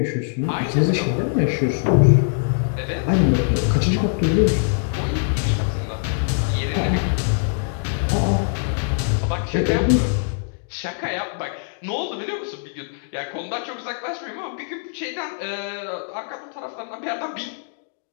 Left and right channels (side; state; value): right; silent; digital silence